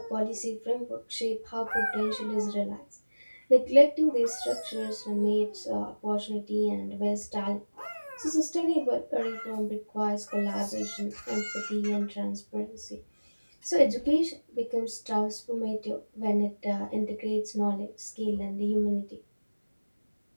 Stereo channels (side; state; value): both; inverted; correlation -1.00